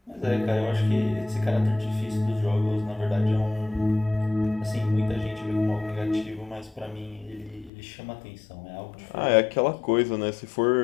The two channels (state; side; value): drops out; right; at 7.7 s